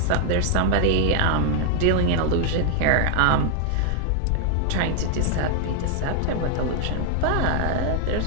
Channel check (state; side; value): different; both; correlation 0.00